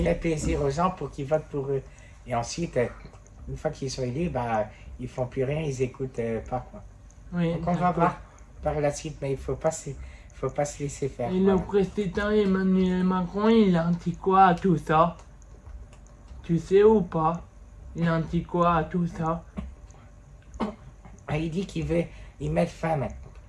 Faire plaisir aux gens pour qu'ils votent pour eux. Et ensuite, une fois qu'ils sont élus, ils font plus rien, ils écoutent pas. Quoi. oui. Donc on va d'accord. voir par la suite, mais il faut pas se laisser faire. Et le président Emmanuel Macron, il a dit quoi à tout ça? Tu sais ou pas? Il a dit quoi à tout ça? Il dit qu'il veut y mettre fin.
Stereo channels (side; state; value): both; identical; correlation 1.00